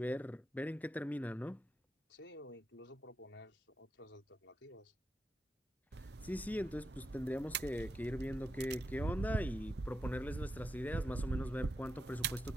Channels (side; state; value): both; normal; correlation 0.86